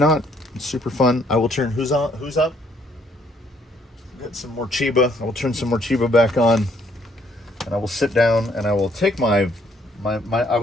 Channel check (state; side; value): normal; both; correlation 0.66